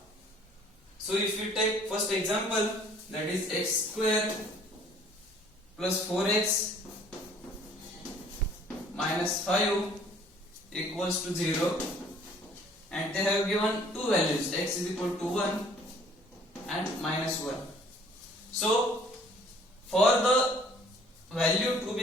So if we take first example, that is x square plus 4x minus 5 equals to 0, and they have given two values, x is equal to 1 and minus 1. So for the value to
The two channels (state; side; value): normal; both; correlation 0.56